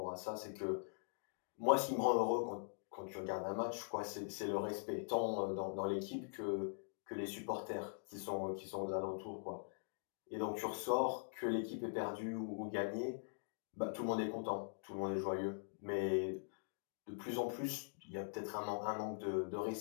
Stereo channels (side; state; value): right; silent; digital silence